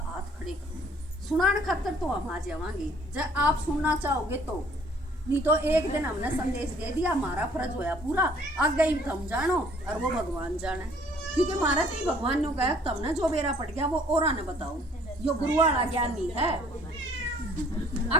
हाथ खड़े करो, सुनाने खातर तो हम आ जावांगे जब आप सुनना चाहोगे तो, नहीं तो एक दिन हमने संदेश दे दिया, हमारा फर्ज होया पूरा, आगे ही हम जानो और वो भगवान जाने। क्योंकि हमारा तो ही भगवान ने कहा तुमने जो बेरा पड़ गया वो और ने बताओ, यो गुरु वाला ज्ञान नहीं है।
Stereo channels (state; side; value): normal; both; correlation 0.58